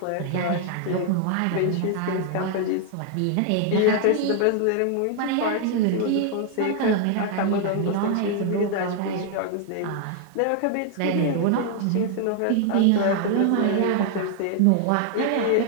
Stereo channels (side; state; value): both; different; correlation 0.00